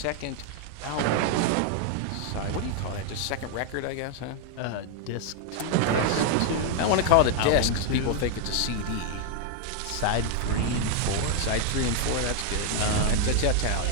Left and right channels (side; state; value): both; different; correlation 0.00